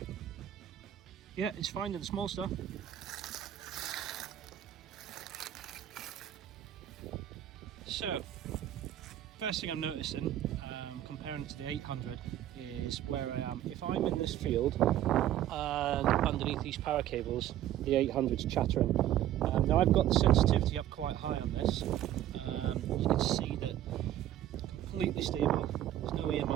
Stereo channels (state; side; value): quieter; left; 12.3 dB